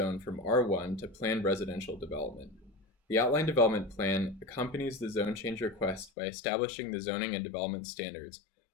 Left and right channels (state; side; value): drops out; right; at 6.1 s